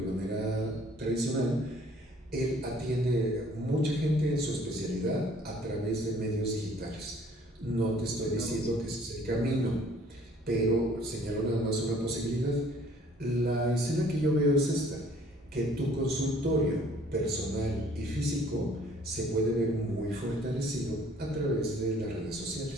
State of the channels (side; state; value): both; normal; correlation 0.57